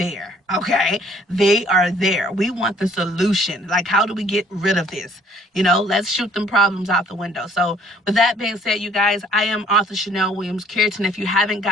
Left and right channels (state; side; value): normal; both; correlation 0.60